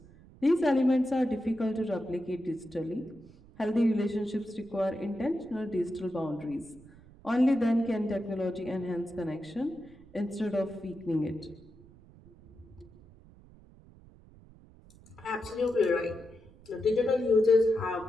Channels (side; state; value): right; noise; rumble, 23 dB below the sound